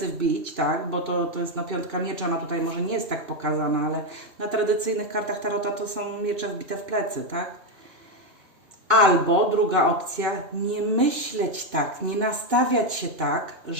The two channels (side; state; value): left; late; 2.6 ms